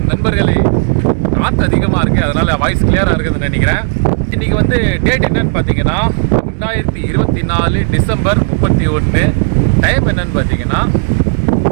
நண்பர்களே, காற்று அதிகமாக இருக்குது, அதனால் வாய்ஸ் கிளியராக இருக்குதுன்னு நினைக்கிறேன். இன்றைக்கி வந்து டேட் என்னன்னு பார்த்தீங்கன்னா 2024 டிசம்பர் 31. டைம் என்னன்னு பார்த்தீங்கன்னா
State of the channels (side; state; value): left; silent; digital silence